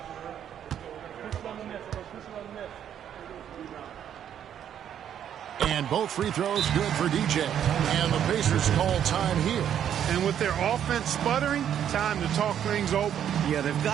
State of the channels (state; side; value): quieter; left; 9.6 dB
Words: And both free throws good for DJ. And the Pacers call time here. And with their offense sputtering, time to talk things over. Yeah, they've